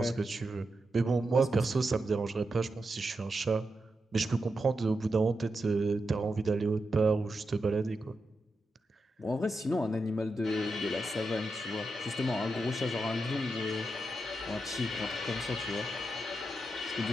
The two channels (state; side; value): normal; both; correlation 0.87